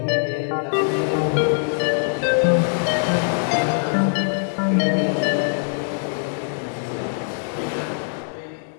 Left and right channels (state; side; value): silent; right; 57 dB below the other